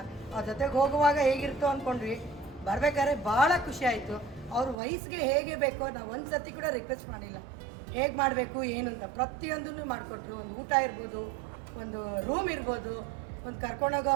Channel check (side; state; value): left; drops out; at 4.8 s